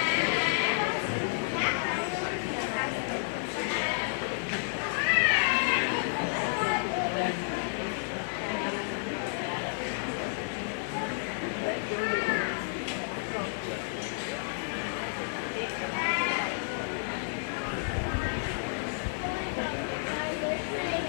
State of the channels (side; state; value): right; silent; digital silence